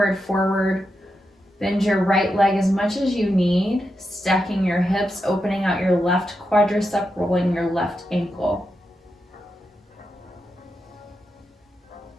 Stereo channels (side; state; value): both; normal; correlation 0.87